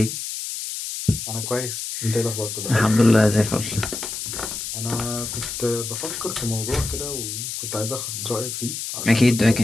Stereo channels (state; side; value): noise; left; hiss, 5 dB below the sound